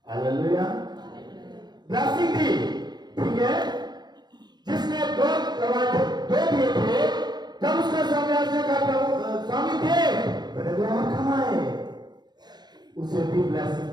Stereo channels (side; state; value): left; late; 0.20 ms